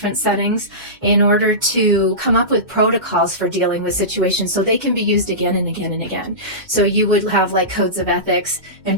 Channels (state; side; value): late; left; 2.1 ms